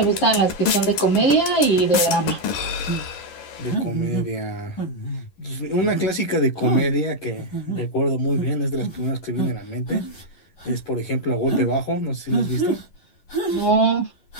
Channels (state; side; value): late; right; 11 ms